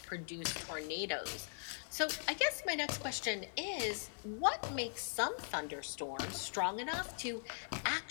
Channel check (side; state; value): right; silent; 51 dB below the other